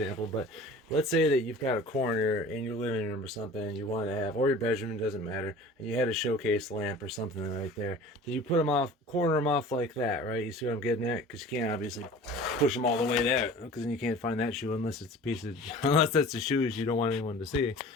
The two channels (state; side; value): normal; both; correlation 0.42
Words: but let's say that you've got a corner in your living room or something and you want to have, or your bedroom, doesn't matter, and you had a showcase lamp or something right there. Then you put them off, corner them off like that, right? You see what I'm getting at? Because you can't obviously push them all the way there, because then you can't find that shoe unless it's a piece of, unless that's the shoes you don't want anyone to see.